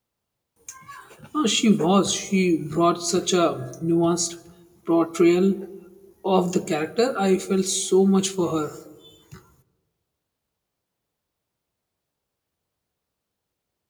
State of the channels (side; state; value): both; identical; correlation 1.00